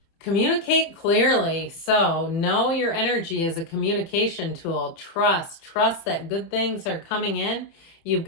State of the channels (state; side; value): late; right; 30 ms